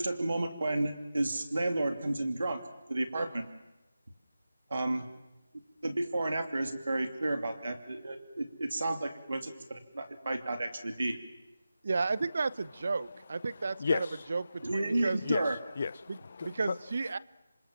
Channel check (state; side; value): inverted; both; correlation -0.93